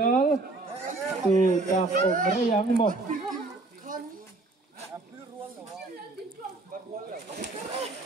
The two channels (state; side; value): quieter; left; 3.2 dB